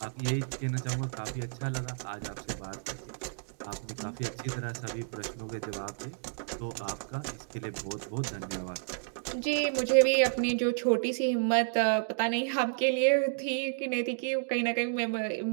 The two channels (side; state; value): left; silent; digital silence